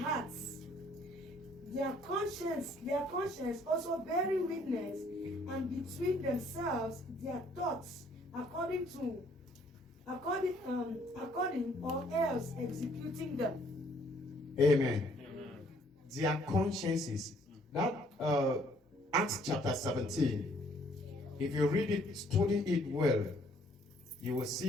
their conscience also bearing witness, and between themselves their thoughts according or else executing them. Amen. Their consciences. That Acts chapter 17, if you read it, study it well, you will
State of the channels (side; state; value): both; normal; correlation 0.63